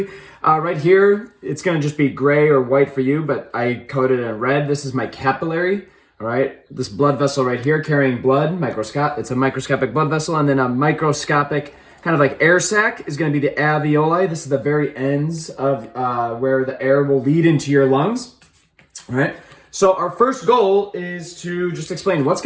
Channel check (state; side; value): identical; both; correlation 1.00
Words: Right here, it's going to just be gray or white for you, but I coded it in red. This is my capillary. All right, this blood vessel right here carrying blood, it's a microscopic blood vessel, and then a microscopic kind of like air sac is going to be the alveoli. This is the very ends of where the air will lead into your lungs. All right, so our first goal is to just explain what's